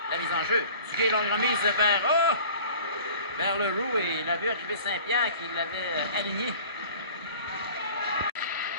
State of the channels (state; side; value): inverted; both; correlation -0.45